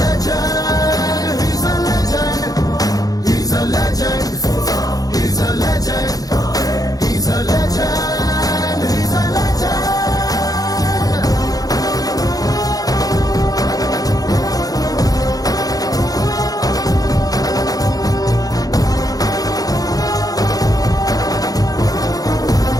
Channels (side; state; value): right; late; 0.18 ms